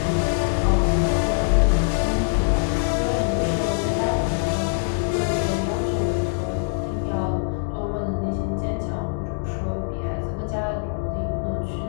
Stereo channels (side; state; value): right; quieter; 37.1 dB